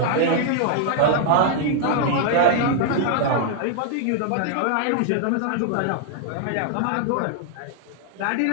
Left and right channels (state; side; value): different; both; correlation 0.00